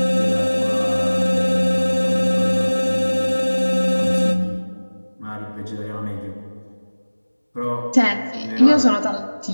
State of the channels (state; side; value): inverted; both; correlation -1.00